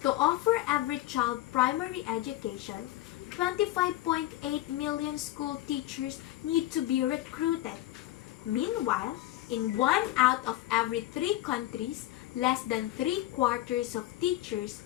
To offer every child primary education, 25.8 million school teachers need to be recruited. Meanwhile, in 1 out of every 3 countries, less than 3/4 of teachers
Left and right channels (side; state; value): right; quieter; 15.4 dB